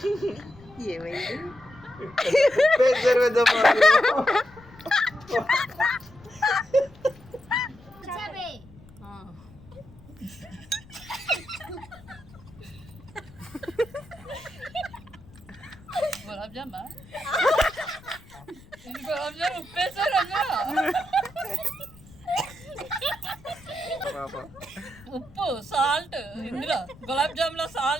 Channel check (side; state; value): left; noise; rumble, 22 dB below the sound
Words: ఏమైంది? గులాబ్ జామా ఇది గులాబ్ జామ్ ఉప్పేసారు ఉప్పు సాల్ట్ ఇందులో గులాబ్ జామ్ లో